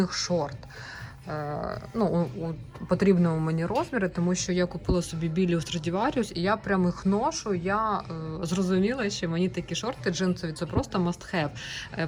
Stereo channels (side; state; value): both; identical; correlation 1.00